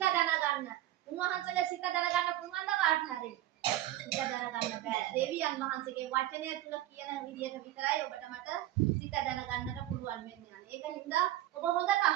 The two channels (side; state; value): left; quieter; 14.3 dB